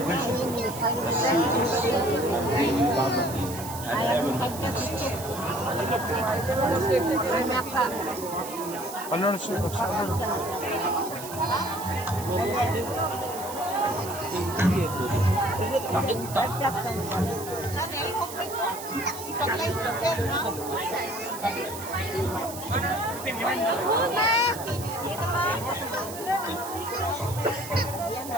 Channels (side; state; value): right; noise; hiss, 11 dB below the sound